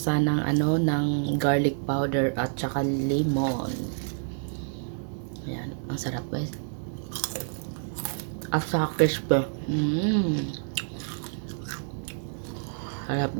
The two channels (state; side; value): silent; left; digital silence